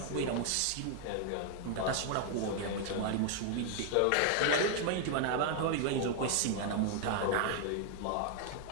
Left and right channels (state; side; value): different; both; correlation 0.00